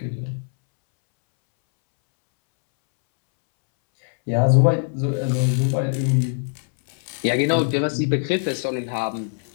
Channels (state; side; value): silent; right; 64 dB below the other